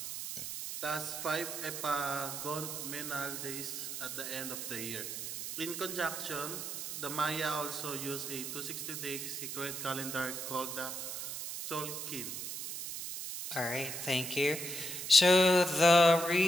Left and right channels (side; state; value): right; noise; hiss, 6 dB below the sound